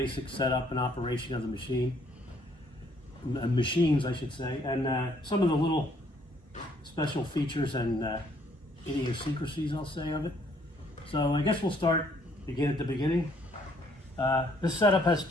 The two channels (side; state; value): both; normal; correlation 0.65